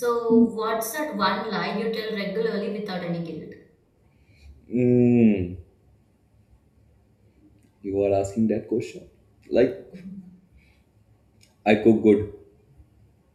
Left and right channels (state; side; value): identical; both; correlation 1.00